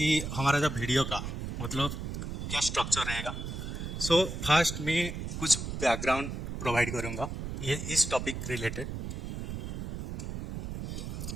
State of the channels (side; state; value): right; noise; rumble, 5 dB below the sound